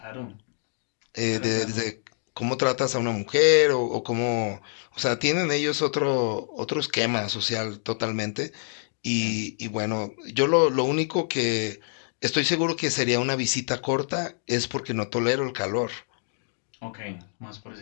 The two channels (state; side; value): silent; right; digital silence